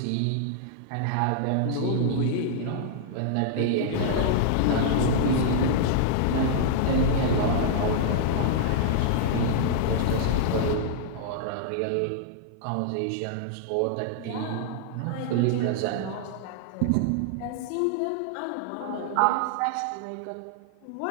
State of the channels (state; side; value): different; both; correlation -0.01